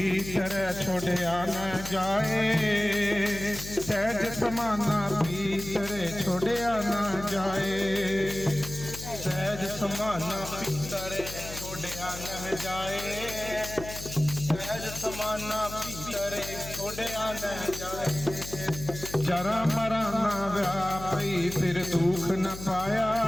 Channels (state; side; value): noise; left; hum, 11 dB below the sound